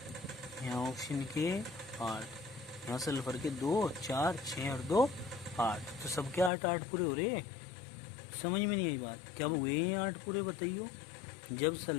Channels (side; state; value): right; drops out; at 6.5 s